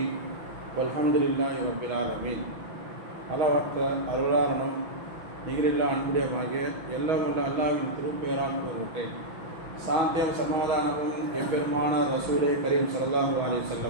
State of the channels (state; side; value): late; left; 6.2 ms